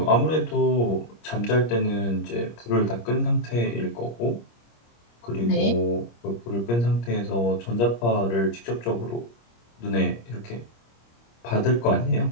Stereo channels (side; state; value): right; late; 25 ms